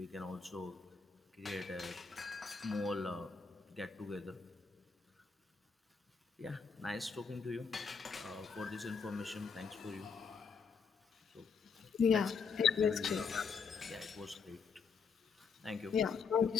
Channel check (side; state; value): right; quieter; 5.6 dB